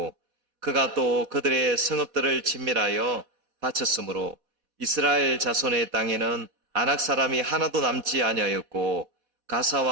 그가 또 그들의 성읍들을 진멸하여 바쳤으므로 이스라엘 자손의 땅에는 아낙 사람이 하나도 남지 아니하였고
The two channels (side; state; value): left; late; 4.1 ms